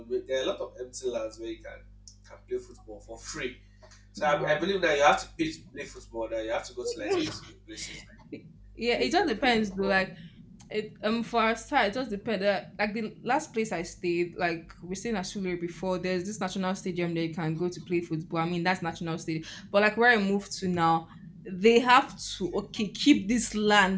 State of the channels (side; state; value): both; identical; correlation 1.00